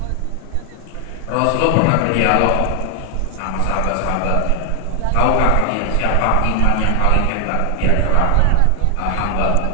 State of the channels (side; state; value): both; different; correlation 0.00